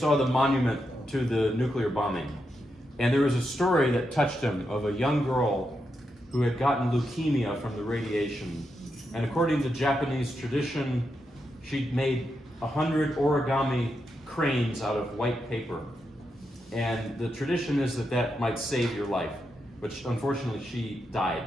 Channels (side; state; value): both; normal; correlation 0.85